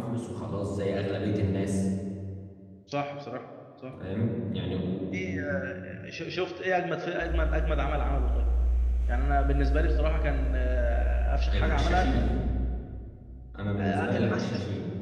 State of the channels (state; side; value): identical; both; correlation 1.00